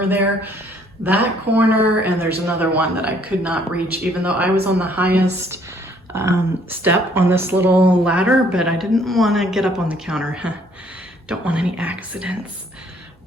there. That corner, and there's another one that I could not reach, even though I was on the highest step on this little ladder, but I didn't want to get up on the counter. Don't want any accidents.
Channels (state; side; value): normal; both; correlation 0.63